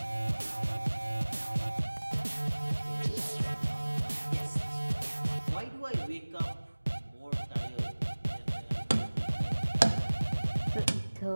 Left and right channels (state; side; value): inverted; both; correlation -1.00